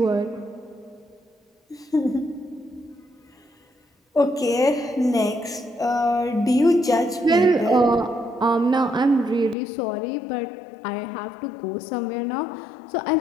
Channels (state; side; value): drops out; right; at 9.6 s